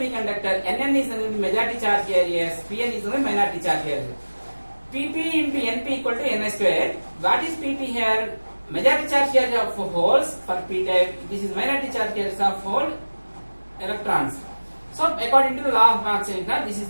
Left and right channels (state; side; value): inverted; both; correlation -1.00